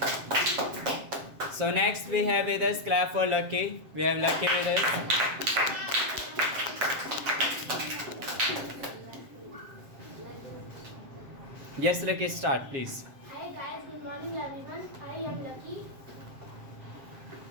So next we have with us, clap for Lucky. We have Lucky with us. Yes, Lucky, start please. Hi guys, good morning everyone. I am Lucky.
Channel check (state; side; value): late; left; 7.6 ms